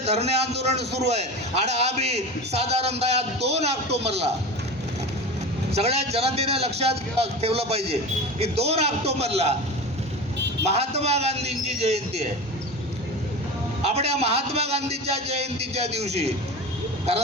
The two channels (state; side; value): normal; both; correlation 0.30